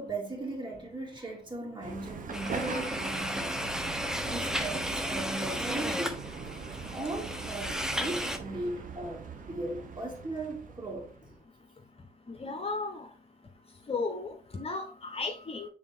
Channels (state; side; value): normal; both; correlation 0.61